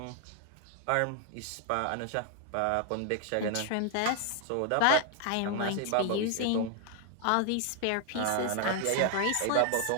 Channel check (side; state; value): both; different; correlation 0.00